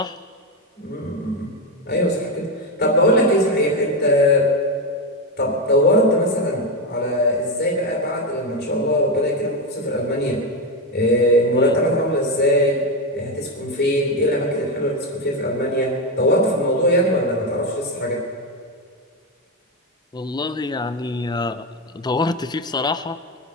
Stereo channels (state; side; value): normal; both; correlation 0.10